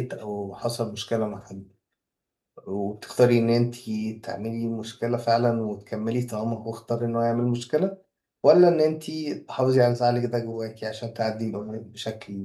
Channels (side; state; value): both; identical; correlation 1.00